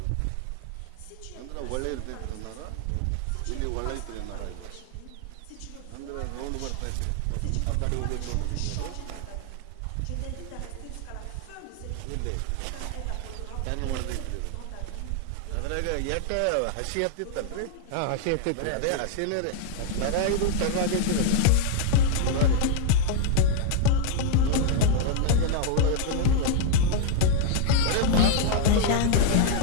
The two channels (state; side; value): different; both; correlation 0.00